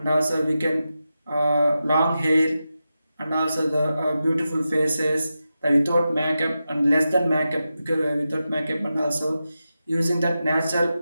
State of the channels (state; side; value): inverted; both; correlation -0.91